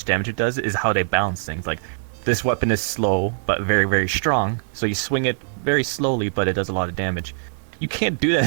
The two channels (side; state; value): left; silent; digital silence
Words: damage it does is how they balance things. Like, this weapon is slow, but very, very strong, so you swing it very slowly, but it does a lot of damage. You can't do that